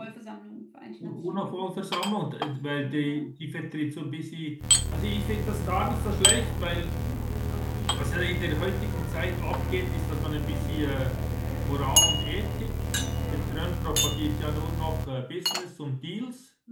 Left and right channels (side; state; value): both; identical; correlation 1.00